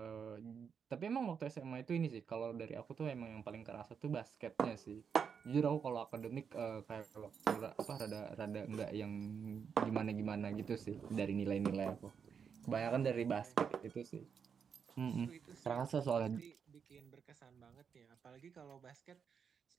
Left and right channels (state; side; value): quieter; left; 6.8 dB